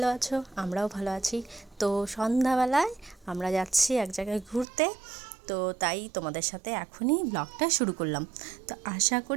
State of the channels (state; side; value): drops out; left; at 4.7 s